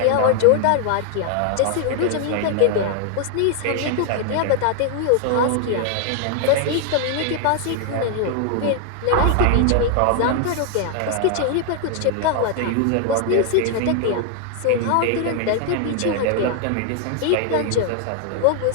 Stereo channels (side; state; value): both; different; correlation 0.00